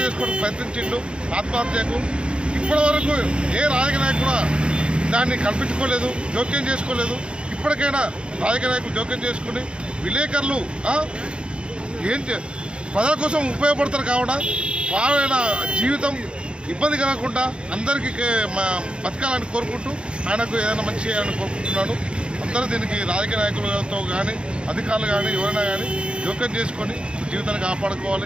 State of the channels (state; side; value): late; left; 0.055 ms